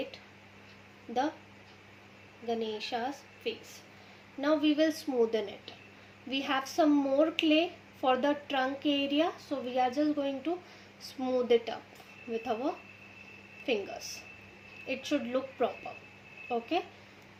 the Ganesha's face. Now we will smoothen it. We have some more clay for the trunk area, so we are just going to smooth it up with our fingers. It should look proper. Okay,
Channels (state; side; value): identical; both; correlation 1.00